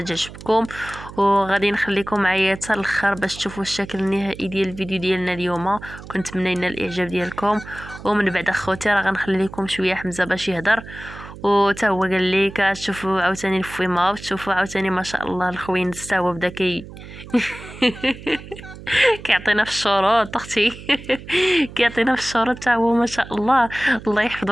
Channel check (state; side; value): noise; right; hum, 15 dB below the sound